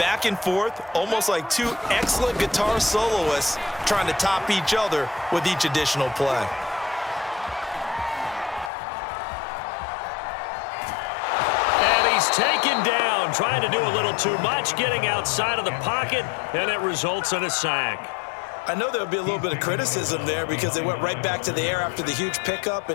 and forth, almost like two excellent guitar soloists trying to top each other with each additional play. Taken down, trying to do a little too much, getting outside of the pocket, and it results in a sack. I know there'll be a little bit of criticism there because they went right back to the air after the huge pickup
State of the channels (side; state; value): right; drops out; at 8.7 s